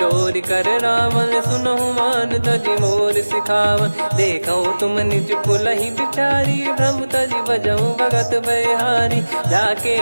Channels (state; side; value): inverted; both; correlation -1.00